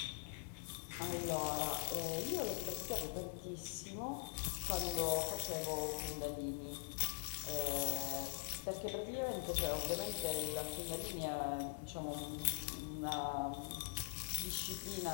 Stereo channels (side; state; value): right; silent; digital silence